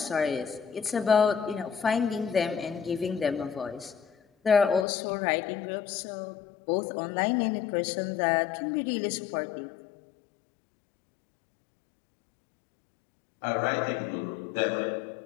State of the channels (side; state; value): right; drops out; at 4.9 s